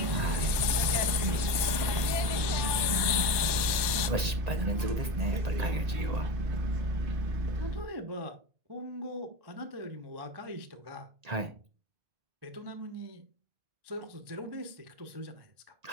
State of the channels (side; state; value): left; late; 1.8 ms